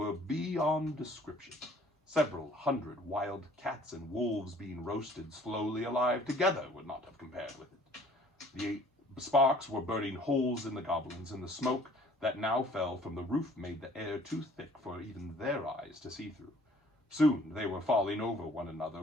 beyond description. Several hundred wild cats and wolves being roasted slowly alive together would not have compared with it. The sparks were burning holes in the goblins, and the smoke that now fell from the roof made the air too thick for even their eyes to see through. Soon they were falling over one another,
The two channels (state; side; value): normal; both; correlation 0.55